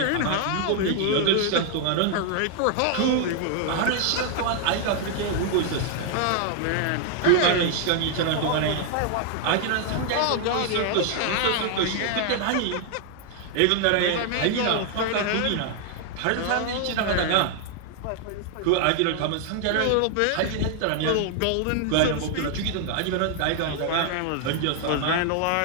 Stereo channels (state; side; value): different; both; correlation 0.00